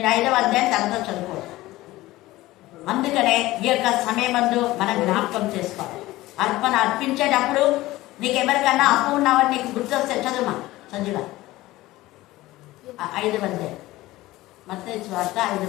5వ అధ్యాయం తర్వాత చదువుకోవచ్చు. అందుకనే ఈ యొక్క సమయమందు మనం జ్ఞాపకం చేసుకోవాలి. అర్పణ అర్పించేటప్పుడు నీకు ఎవరికన్నా అప్పు ఉన్నావని నీకు గుర్తొస్తే చదువుమా సంజుగా 5వ అధ్యాయం, మత్తయి సువార్త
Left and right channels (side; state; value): right; quieter; 17.7 dB